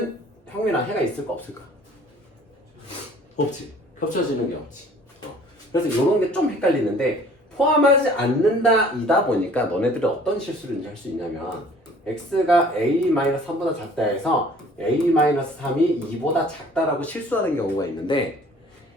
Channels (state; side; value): normal; both; correlation 0.52